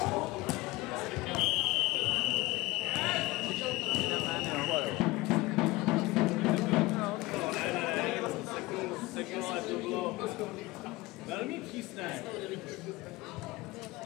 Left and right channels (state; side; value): quieter; right; 20.7 dB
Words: Seknul, ale to bylo velmi přísné.